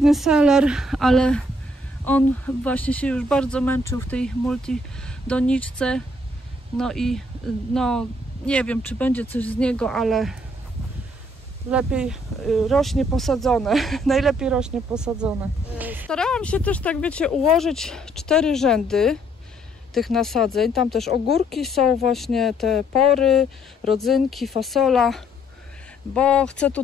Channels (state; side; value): normal; both; correlation 0.67